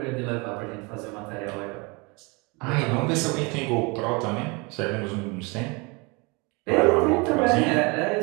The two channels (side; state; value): left; quieter; 28.3 dB